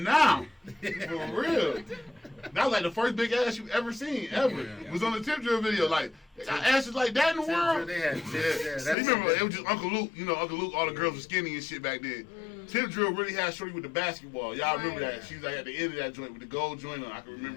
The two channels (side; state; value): right; drops out; at 9.0 s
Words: For real. That was like the first big ass you ever seen, ever. It was on the Tip Drill video. Like, they got asses like that in the world. They had You remember, it was just Uncle Luke. You know, Uncle Luke, all the girls were skinny and shit back then. Tip Drill really had shorty with the basketball. Y'all remember that? She was like at the end of that joint with the gold joint on. I can